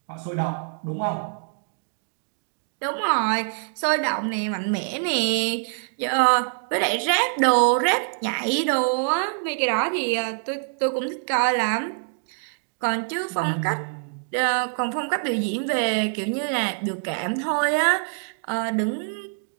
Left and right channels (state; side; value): silent; left; digital silence